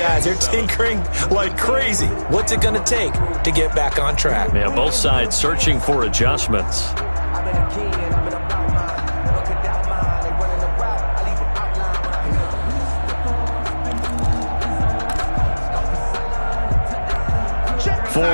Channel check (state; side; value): inverted; both; correlation -1.00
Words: they're tinkering like crazy. What's it going to take to get back on track? Yeah, both sides searching for adjustments.